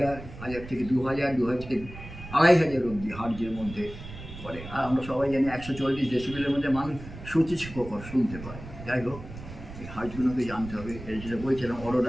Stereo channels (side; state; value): right; noise; rumble, 13 dB below the sound